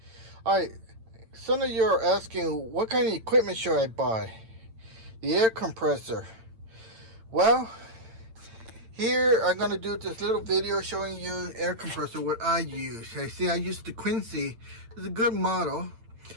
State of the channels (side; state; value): left; late; 8.8 ms